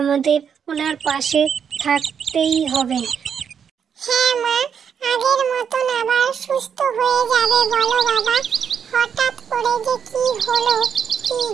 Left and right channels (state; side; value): quieter; left; 7.4 dB